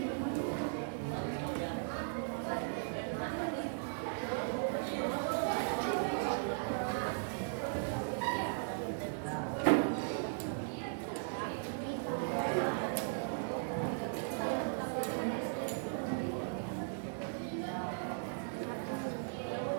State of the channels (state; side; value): silent; left; digital silence